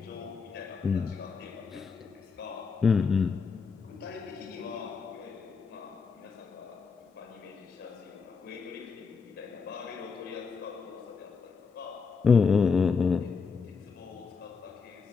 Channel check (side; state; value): right; quieter; 5.3 dB